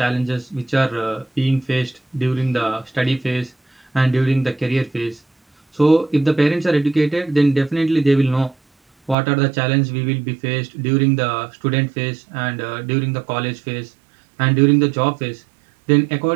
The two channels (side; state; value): left; drops out; at 9.2 s